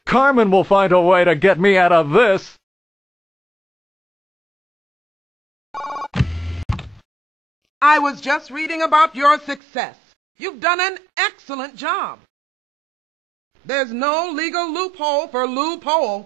Carmen will find a way to get me out of this. I was just reading about your success. You've done an excellent job. There's no legal loophole for Lou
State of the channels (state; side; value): drops out; left; at 9.6 s